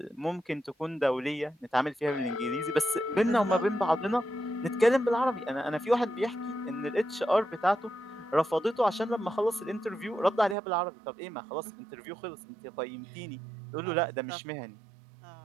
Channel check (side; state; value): left; drops out; at 10.6 s